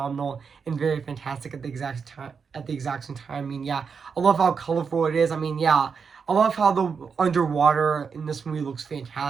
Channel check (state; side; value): quieter; left; 5.8 dB